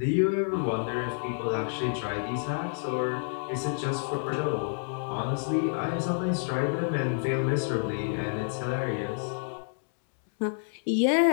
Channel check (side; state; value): right; silent; 59 dB below the other